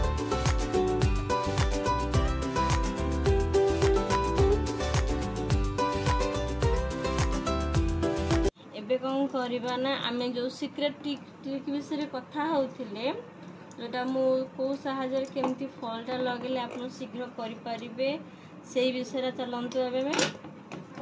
कौन करबा ना आमे जो सीक्रेट ट्रिक विषय कथा होथिले जोटा मु को सहायता केमती फॉल टा लगेले आपण शीघ्र करि परिबे सेही विषय चलंतु एबे में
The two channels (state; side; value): identical; both; correlation 1.00